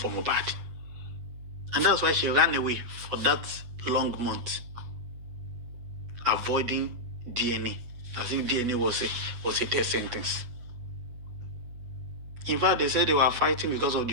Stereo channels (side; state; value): left; late; 8.2 ms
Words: Mohbad. And that's why she ran away for that long month, avoiding DNA, as if DNA was a death sentence. In fact, they said they were fighting because of the